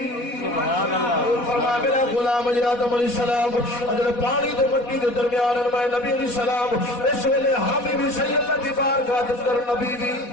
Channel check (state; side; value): late; right; 4.1 ms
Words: سبحان اللہ فرمایا میرا غلام آدم علیہ السلام اجل پانی دے مٹی دے درمیان میں نبی علیہ السلام اس ویلے حامی بھی صحیح اللہ دی بارگاہ دے کر نبی بھی